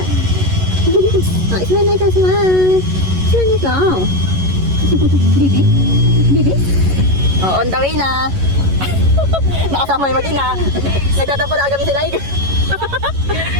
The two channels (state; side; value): late; left; 11 ms